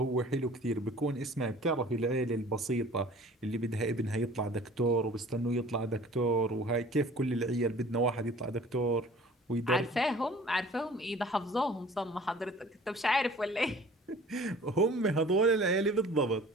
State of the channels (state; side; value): normal; both; correlation 0.48